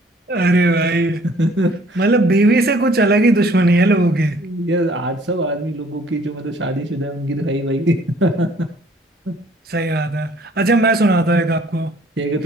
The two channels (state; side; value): normal; both; correlation 0.58